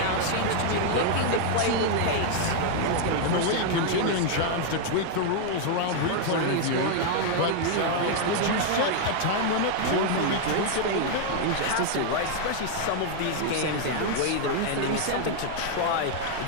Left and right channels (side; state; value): both; different; correlation 0.00